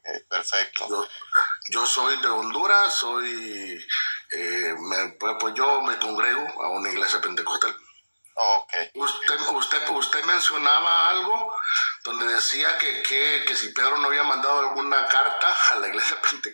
perfecto. Yo soy de Honduras, pues yo me congrego a una iglesia pentecostal. Ok. Usted mencionaba algo donde decía que si Pedro no había mandado alguna carta a la iglesia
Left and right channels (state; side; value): inverted; both; correlation -1.00